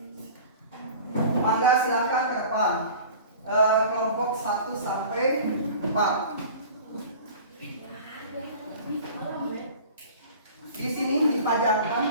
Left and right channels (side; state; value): both; inverted; correlation -0.41